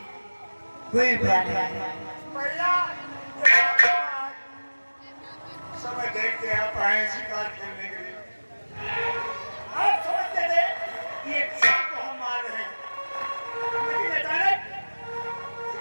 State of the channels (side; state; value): both; inverted; correlation -1.00